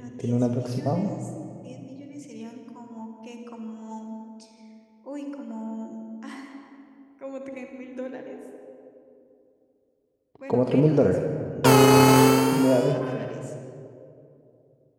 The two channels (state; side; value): identical; both; correlation 1.00